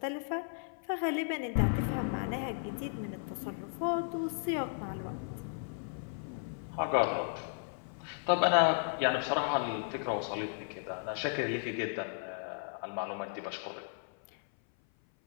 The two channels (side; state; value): right; silent; 54 dB below the other